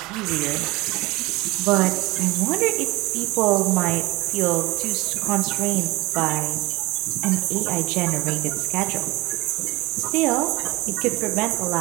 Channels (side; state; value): left; quieter; 22.2 dB